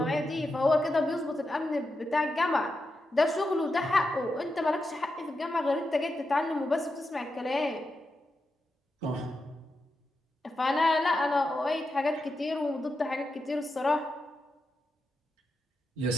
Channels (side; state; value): both; normal; correlation 0.88